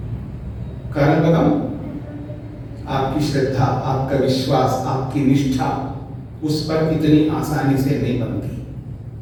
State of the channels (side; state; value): both; identical; correlation 1.00